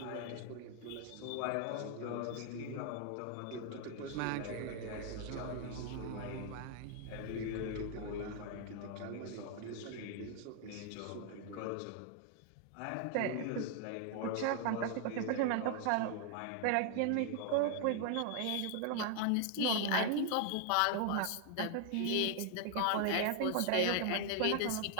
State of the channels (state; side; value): different; both; correlation 0.00